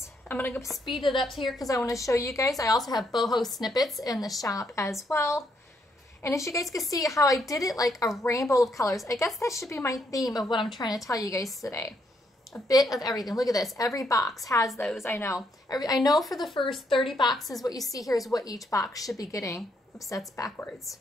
I'm going to speed it up here because I want to show you guys. I also have boho snippets in the shop as well. And as you guys can see how I did it like a rainbow of colors. I guess that should be my theme of what I'm trying to tell you guys today. A bit of everything. Look at this. Every box has those, I know. I know for the first 30 boxes, what you see here is what each box should be getting. Oops, that's backwards.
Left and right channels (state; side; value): normal; both; correlation 0.75